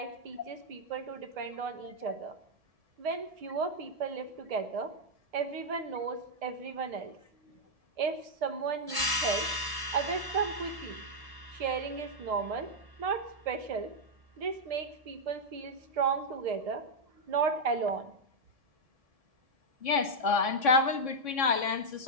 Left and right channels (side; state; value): left; late; 1.7 ms